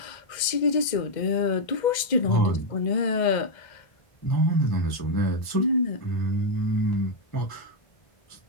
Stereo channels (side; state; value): right; late; 2.0 ms